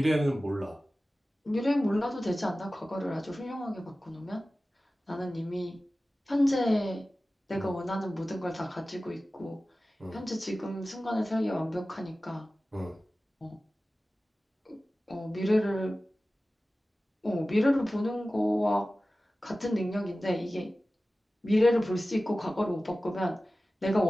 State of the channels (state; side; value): normal; both; correlation 0.96